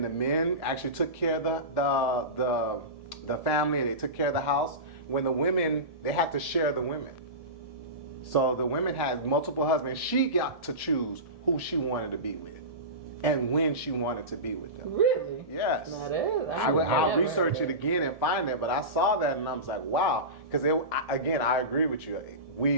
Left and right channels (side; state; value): left; late; 1.7 ms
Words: the men actually took care of the family. They took care of the house. When the women, they had to share the women. So the women had multiple husbands. She got to choose who she wanted to be with, and when she wanted to be with them. Really? Yes. Now that is, I'll research it again and find it, but I saw that and I was like, wow. Because again, I agree with you.